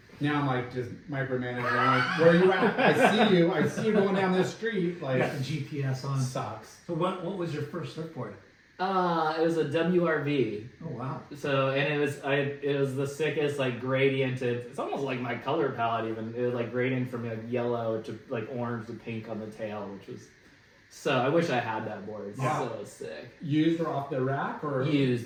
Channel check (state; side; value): identical; both; correlation 1.00